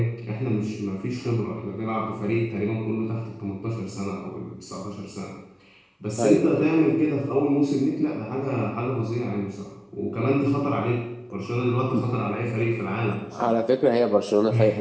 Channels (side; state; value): both; identical; correlation 1.00